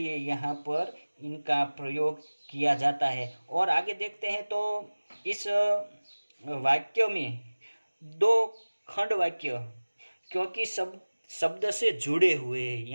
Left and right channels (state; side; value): inverted; both; correlation -1.00